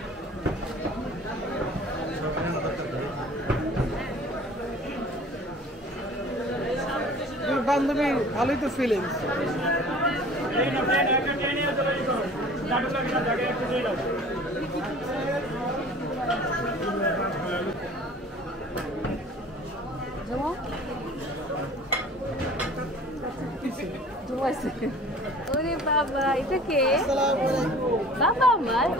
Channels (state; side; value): normal; both; correlation 0.46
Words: বান্ধবী ভালোই তো ফিলিংস ওরে বাবা এটা কে বাবা আমার